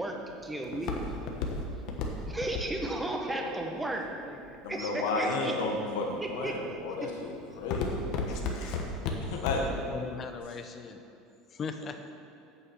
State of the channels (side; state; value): both; normal; correlation 0.33